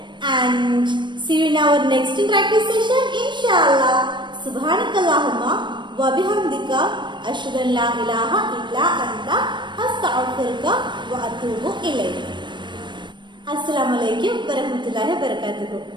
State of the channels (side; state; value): left; late; 0.22 ms